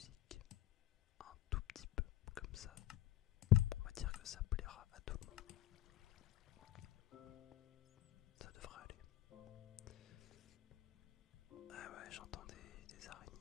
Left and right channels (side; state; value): right; quieter; 14.2 dB